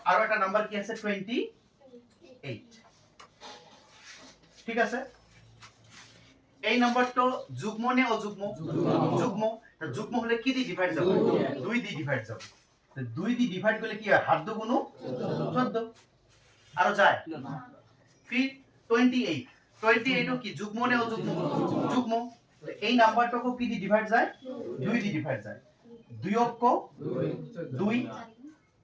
আৰু এটা নাম্বার কি আছে 28 ঠিক আছে এই নাম্বারটো যুগ্ম নে অযুগ্ম যুগ্ম তা যুগ্ম হলে কি দি ডিভাইড যাব 2 দি ডিভাইড যাব তো 2 দি ডিভাইড করলে কি হয় হাত দু গুণ 14 আর যায় ফির 28 ও কি যুগ্ম নে অযুগ্ম যুগ্ম এই নাম্বারটাকে কি দি ডিভাইড যায় 2 দি ডিভাইড যায় 2 অক্ষ 2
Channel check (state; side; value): identical; both; correlation 1.00